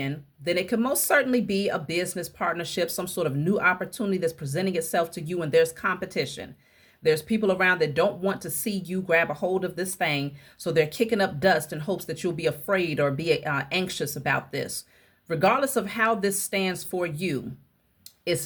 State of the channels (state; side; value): identical; both; correlation 1.00